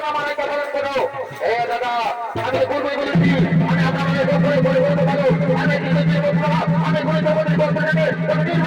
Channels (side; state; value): both; identical; correlation 1.00